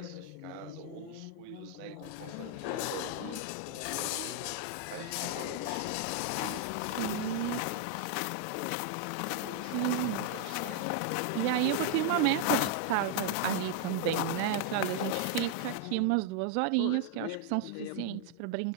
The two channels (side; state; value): both; different; correlation 0.00